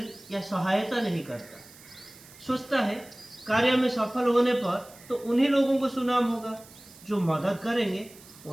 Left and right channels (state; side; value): noise; right; hiss, 21 dB below the sound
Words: या सहायता नहीं करता। सोचता है कार्य में सफल होने पर तो उन्हीं लोगों को सुनाम होगा, जो मदद करेंगे